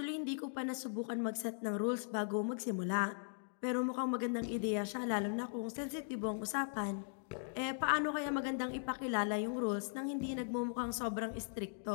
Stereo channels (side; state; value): right; silent; digital silence